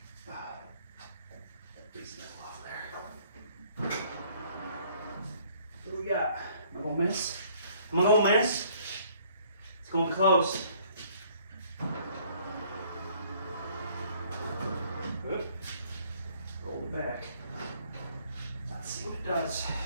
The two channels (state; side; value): inverted; both; correlation -0.60